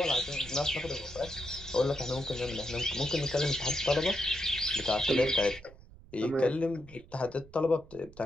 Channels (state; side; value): noise; right; rumble, 21 dB below the sound